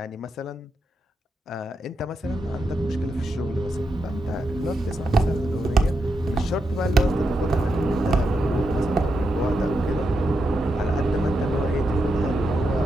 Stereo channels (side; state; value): both; normal; correlation 0.84